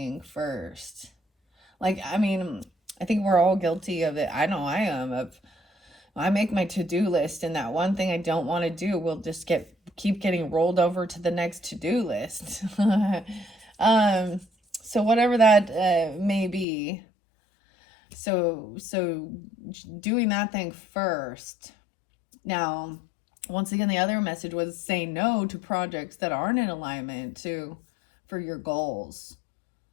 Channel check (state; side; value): drops out; right; at 16.7 s